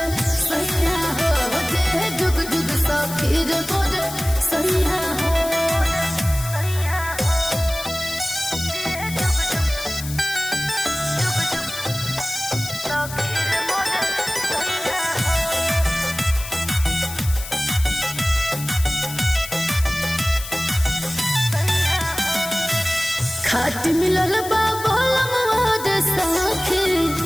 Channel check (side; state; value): left; noise; hiss, 11 dB below the sound